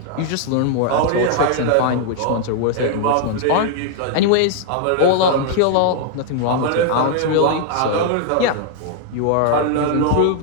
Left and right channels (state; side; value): different; both; correlation 0.00